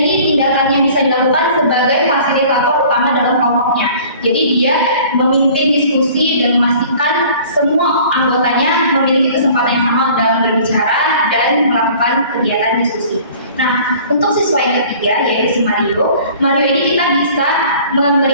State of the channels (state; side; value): inverted; both; correlation -0.49